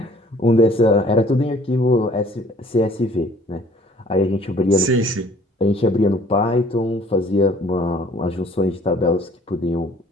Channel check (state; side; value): normal; both; correlation 0.55